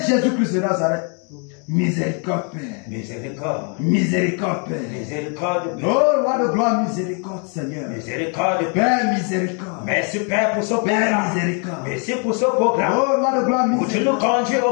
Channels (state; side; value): quieter; right; 38.6 dB